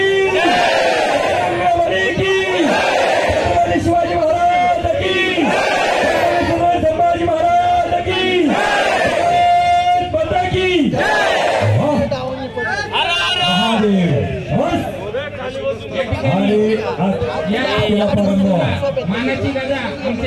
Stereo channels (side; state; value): both; identical; correlation 1.00